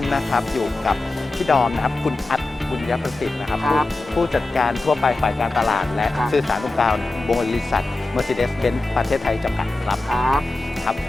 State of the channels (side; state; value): right; quieter; 3.0 dB